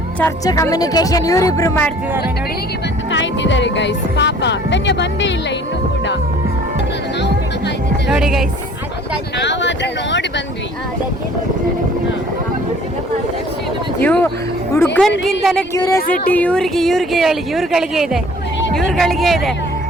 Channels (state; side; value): normal; both; correlation 0.52